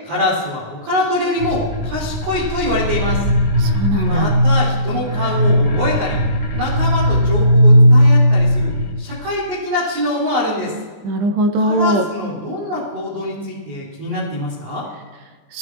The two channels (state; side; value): late; left; 20 ms